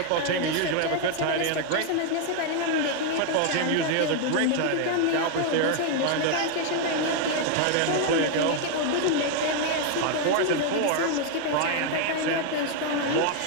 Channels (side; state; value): both; different; correlation 0.00